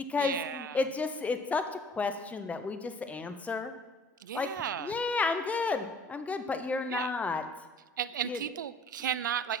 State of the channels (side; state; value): both; normal; correlation 0.51